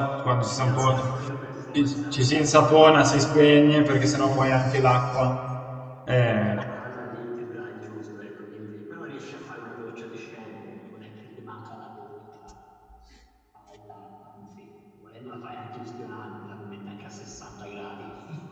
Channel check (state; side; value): identical; both; correlation 1.00